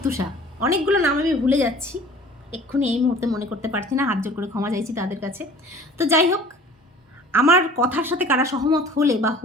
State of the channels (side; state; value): both; normal; correlation 0.47